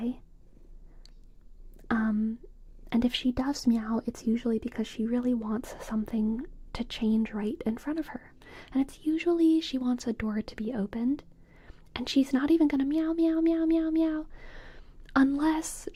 And if she does meow, it's usually because she really wants something to change right in front of her. And it's usually she wants a door to be opened. And she's not even gonna meow, meow, meow, meow, meow. Unless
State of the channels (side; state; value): both; identical; correlation 1.00